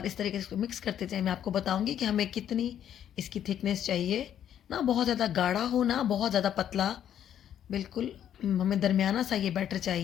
इस तरीके से इसको मिक्स करते जाएँ। मैं आपको बताऊँगी कि हमें कितनी इसकी थिकनेस चाहिए, ना बहुत ज़्यादा गाढ़ा हो ना बहुत ज़्यादा पतला, बिल्कुल हमें दरमियाना सा ये बैटर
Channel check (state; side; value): quieter; right; 10.1 dB